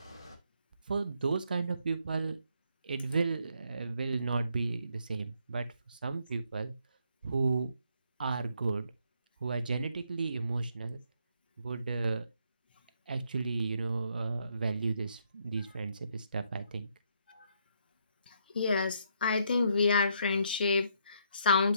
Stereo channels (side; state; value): both; inverted; correlation -0.73